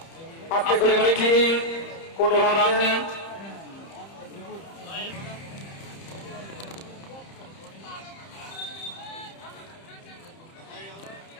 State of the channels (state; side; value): late; right; 30 ms